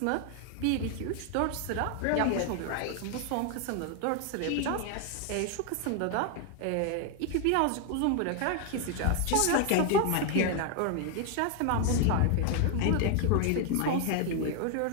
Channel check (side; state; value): both; different; correlation 0.01